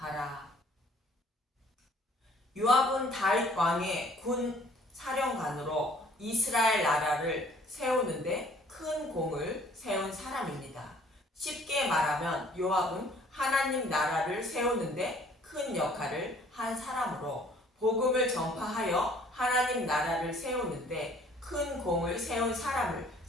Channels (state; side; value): normal; both; correlation 0.57